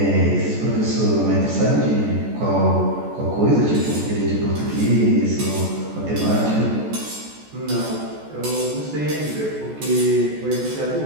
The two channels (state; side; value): late; left; 14 ms